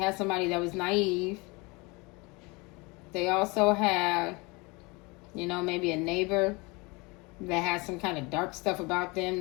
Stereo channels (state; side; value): quieter; right; 26.6 dB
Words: somebody that was naive. They also had, you know, maybe a neighbor that had some kind of dark stuff about them